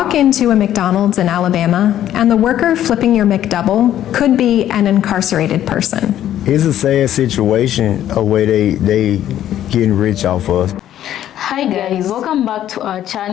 into a McDonald's in Alabama, and the worker flipping your McDouble could be an incarcerated person. It's a sad situation, a way they getting rich off us. Hi guys, welcome back to our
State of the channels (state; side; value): quieter; right; 11.7 dB